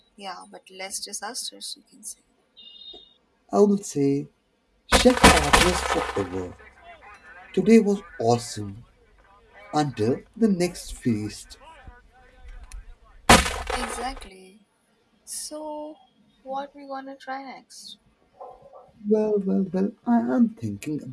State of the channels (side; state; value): both; identical; correlation 1.00